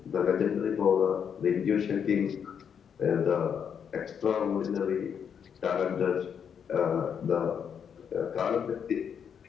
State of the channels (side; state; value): right; quieter; 7.6 dB